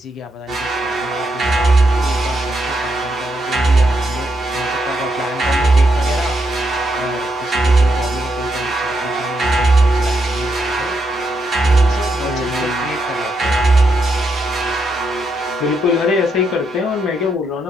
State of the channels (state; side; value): normal; both; correlation 0.80